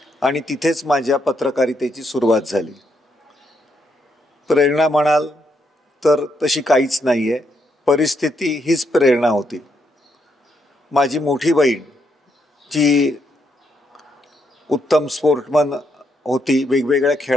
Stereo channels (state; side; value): normal; both; correlation 0.77